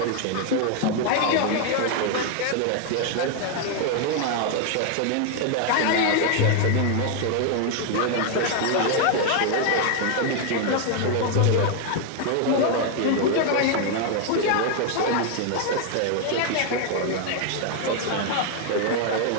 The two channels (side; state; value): both; different; correlation 0.01